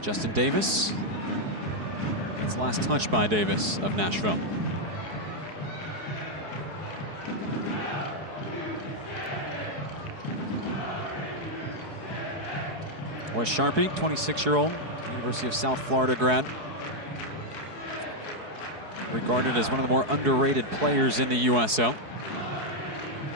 Justin Davis. It's last touch by Davis of Nashville. Wes Sharpie, 26-year-old, University of South Florida grad. Regarded as one of the more underrated players in the USL.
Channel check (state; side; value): late; left; 4.7 ms